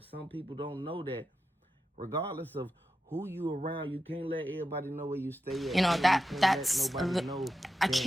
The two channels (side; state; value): both; normal; correlation 0.90